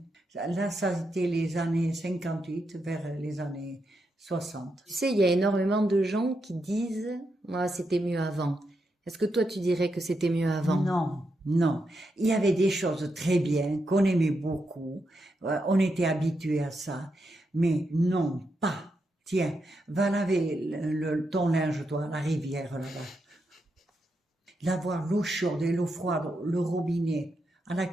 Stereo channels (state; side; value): normal; both; correlation 0.84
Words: Là, ça a été les années 58 vers les années 60. Tu sais, il y a énormément de gens qui disent, moi, c'était mieux avant. Est-ce que toi, tu dirais que c'était mieux avant? Non. Il y avait des choses très bien, qu'on aimait beaucoup. On était habitués à ça. Mais non, pas. Tiens, va laver ton linge, toi, à la rivière, là-bas. D'avoir l'eau chaude et l'eau froide, le robinet, à la